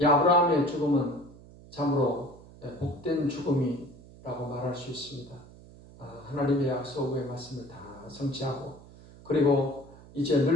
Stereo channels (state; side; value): noise; right; hum, 21 dB below the sound